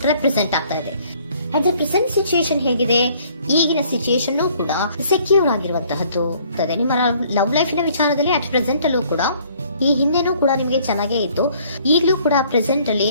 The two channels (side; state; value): both; inverted; correlation -0.60